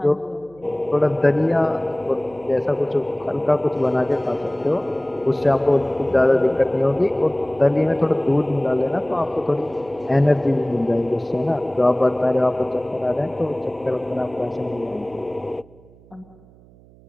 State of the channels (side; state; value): right; noise; hum, 26 dB below the sound